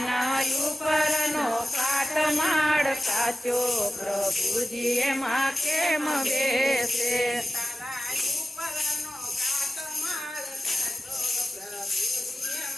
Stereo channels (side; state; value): both; normal; correlation 0.94